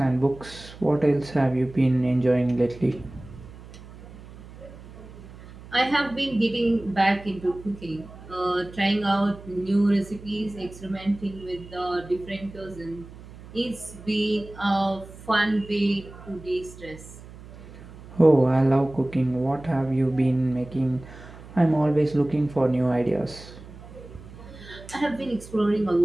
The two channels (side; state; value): right; noise; hum, 17 dB below the sound